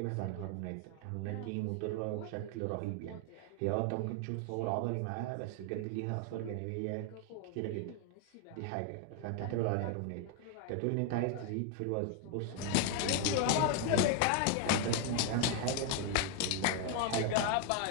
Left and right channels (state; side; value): different; both; correlation 0.01